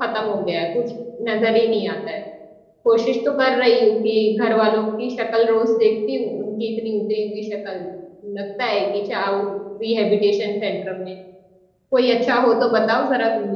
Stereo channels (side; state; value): both; identical; correlation 1.00